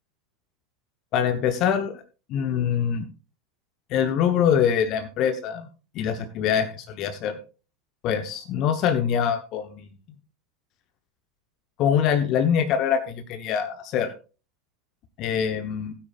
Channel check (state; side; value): quieter; right; 7.9 dB